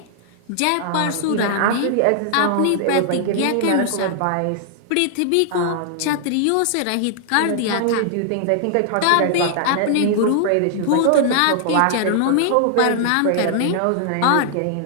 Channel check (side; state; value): both; different; correlation 0.00